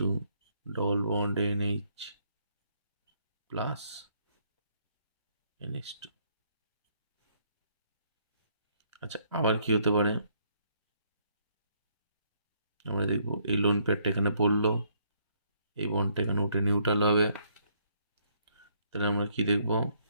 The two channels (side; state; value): both; inverted; correlation -0.70